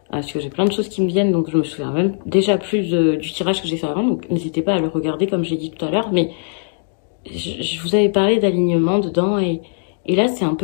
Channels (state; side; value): silent; right; digital silence